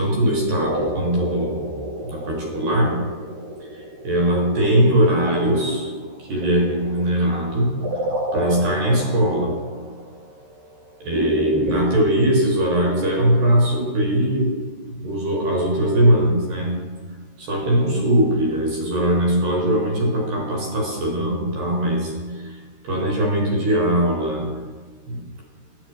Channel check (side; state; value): left; late; 13 ms